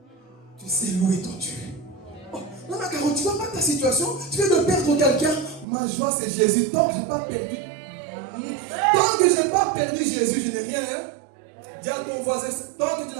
tu sais louer ton Dieu. Oh, non, mais Caro, tu ne vois pas ta situation. Tu viens de perdre quelqu'un. Ma joie, c'est Jésus. Tant que je n'ai pas perdu. Tant que je n'ai pas perdu Jésus, je n'ai rien. Hein? Dis à ton voisin, tant que tu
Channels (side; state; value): left; drops out; at 5.7 s